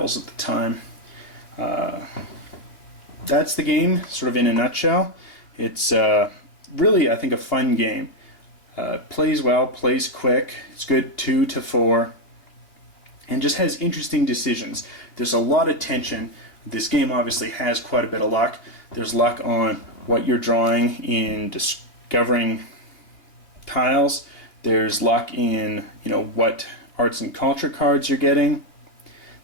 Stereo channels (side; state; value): right; late; 2.8 ms